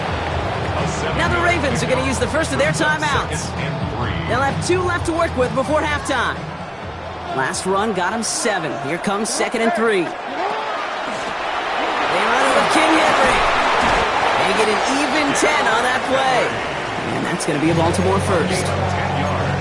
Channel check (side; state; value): both; identical; correlation 1.00